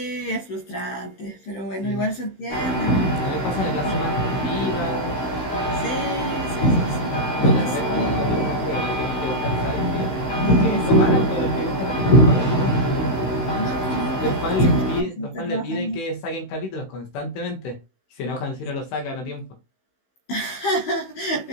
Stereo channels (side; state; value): right; late; 16 ms